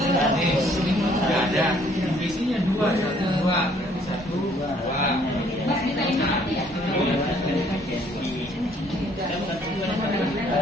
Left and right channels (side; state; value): both; normal; correlation 0.62